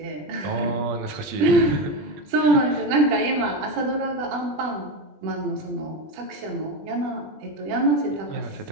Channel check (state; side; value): late; left; 20 ms